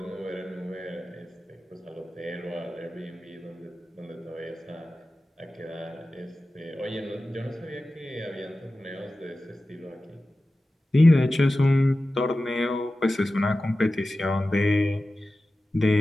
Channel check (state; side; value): normal; both; correlation 0.95